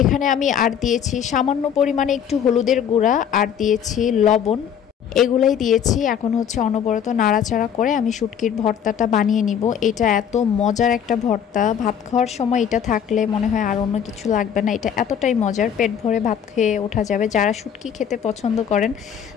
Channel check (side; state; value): right; quieter; 8.4 dB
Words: এখানে আমি আর দিয়েছি সামান্য পরিমাণে একটু হলুদের গুঁড়া, আর দিয়েছি লবণ। এগুলাই দিয়েছি। এখন হচ্ছে অনবরত নাড়াচাড়া করে আমি শুটকির ভর্তাটা বানিয়ে নিব। এটা এত মজার একটা ভর্তা, ভাত খাওয়ার সময় এটা থাকলে মনে হয় আর অন্য কিছু লাগবে না। এটা এতটাই মজার, পেট ভরে ভাত খেয়ে ওঠা যাবে। যারা শুটকি খেতে পছন্দ করেন